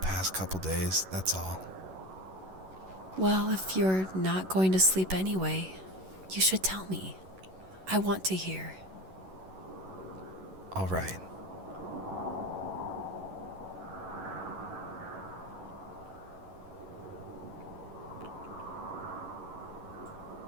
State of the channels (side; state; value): left; late; 11 ms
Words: couple days, that's all. Well, if you're not going to sleep anyway, you should tell me. I want to hear. All right.